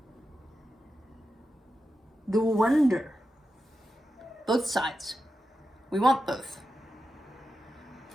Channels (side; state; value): both; normal; correlation 0.90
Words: The wonder. Both sides. We want both.